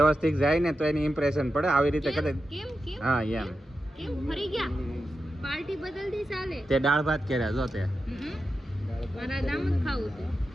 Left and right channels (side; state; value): both; normal; correlation 0.90